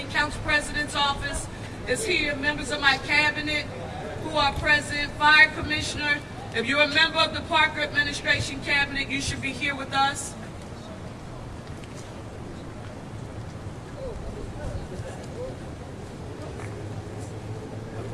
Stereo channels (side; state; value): both; identical; correlation 1.00